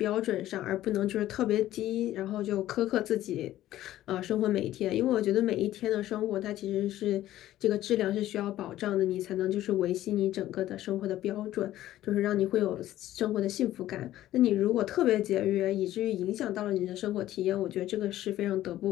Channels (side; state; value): right; quieter; 13.9 dB